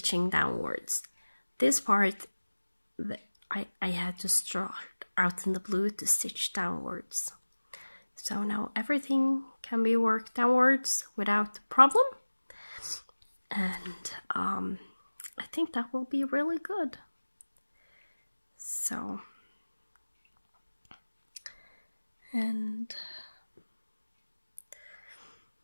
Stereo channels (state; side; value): inverted; both; correlation -1.00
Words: downwards. This part I had to start out in the blue to stitch downwards. So now everything can be worked downwards without problem, and I think that will be really good. So, and